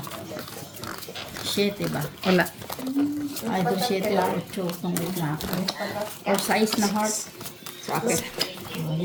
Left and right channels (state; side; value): identical; both; correlation 1.00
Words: Sheet ba? Wala. Ay, ito sheet lang. 8 kung na ako. Or size na heart. Sa akin.